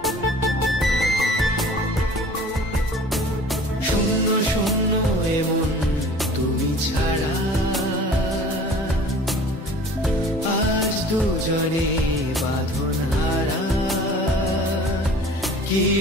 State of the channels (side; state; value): both; normal; correlation 0.46